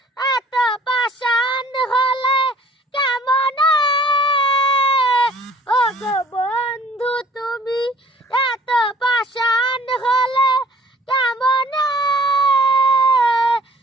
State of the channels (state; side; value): normal; both; correlation 0.54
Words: এত পাষাণ হলে কেমনে ও গো বন্ধু তুমি এত পাষাণ হলে কেমনে